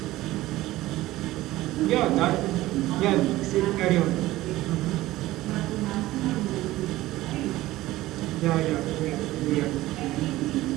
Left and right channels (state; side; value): quieter; left; 16.9 dB